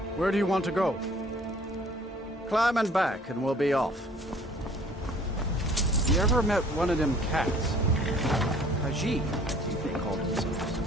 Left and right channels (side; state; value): both; normal; correlation 0.54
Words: Where do you want to go? Climb and back, and we'll be off. You ever met one of them cats? Khajiit, I think they call themselves.